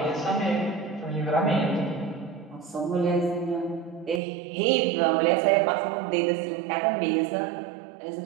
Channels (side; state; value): left; drops out; at 4.2 s